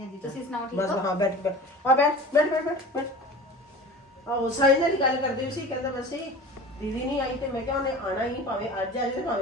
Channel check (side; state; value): both; normal; correlation 0.37